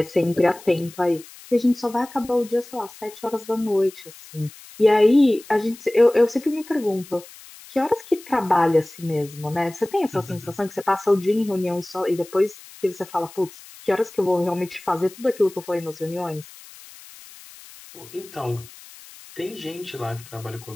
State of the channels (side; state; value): left; noise; hiss, 20 dB below the sound